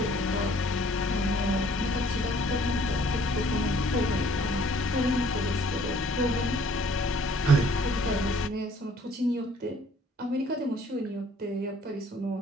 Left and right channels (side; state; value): both; normal; correlation 0.58